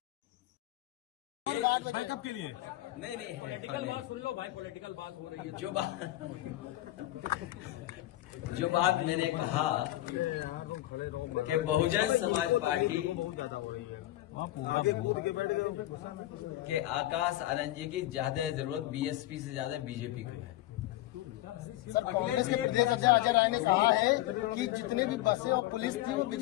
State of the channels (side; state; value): right; quieter; 15.7 dB